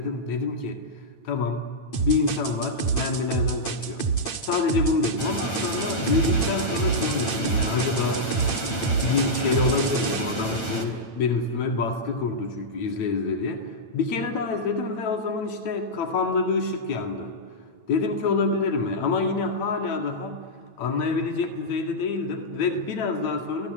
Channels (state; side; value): late; right; 9.0 ms